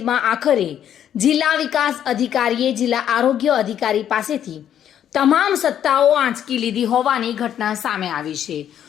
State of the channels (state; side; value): quieter; right; 10.0 dB